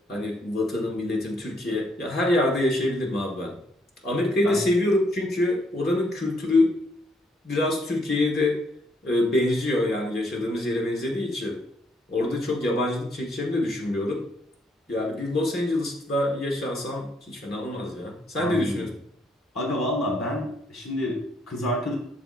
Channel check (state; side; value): normal; both; correlation 0.71